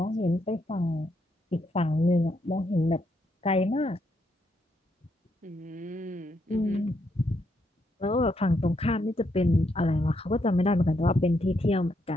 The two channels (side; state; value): both; normal; correlation 0.77